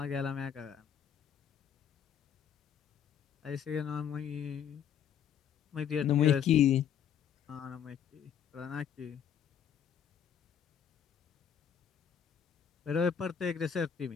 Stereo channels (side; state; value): right; quieter; 8.4 dB